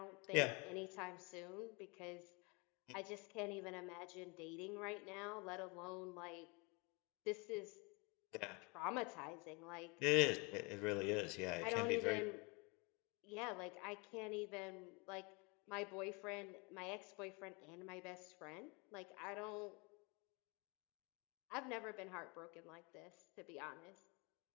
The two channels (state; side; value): quieter; right; 29.6 dB